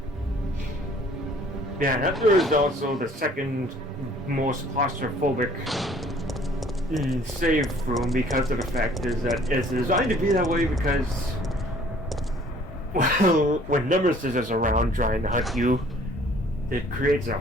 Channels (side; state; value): both; normal; correlation 0.56